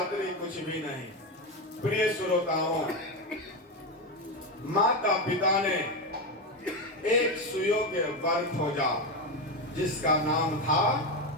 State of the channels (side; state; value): both; normal; correlation 0.13